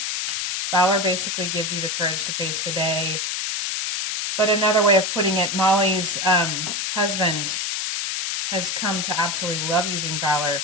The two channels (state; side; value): noise; left; hiss, 1 dB below the sound